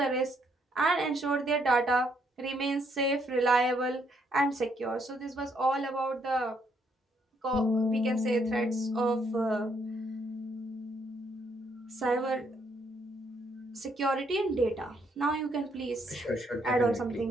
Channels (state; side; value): normal; both; correlation 0.72